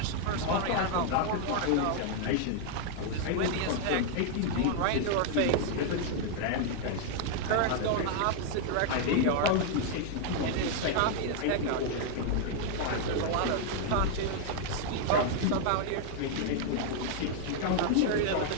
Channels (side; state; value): both; different; correlation 0.00